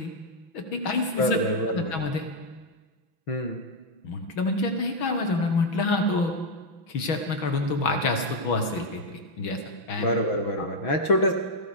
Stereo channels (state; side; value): late; right; 6.2 ms